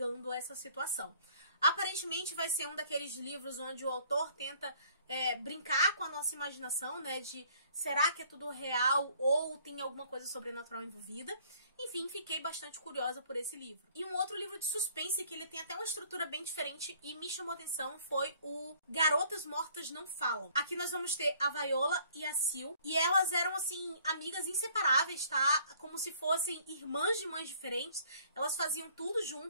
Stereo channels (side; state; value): both; inverted; correlation -0.58